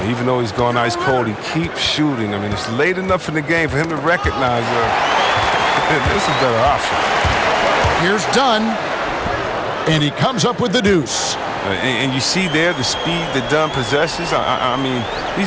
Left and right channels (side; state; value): both; identical; correlation 1.00